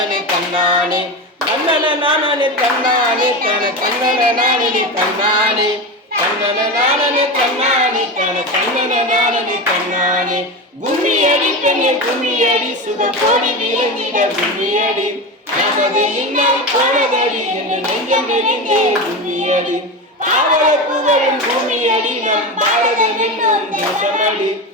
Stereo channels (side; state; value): both; normal; correlation 0.21